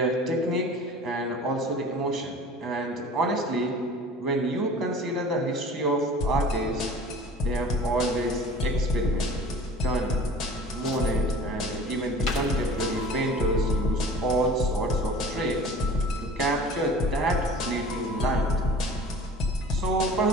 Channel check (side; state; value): both; normal; correlation 0.44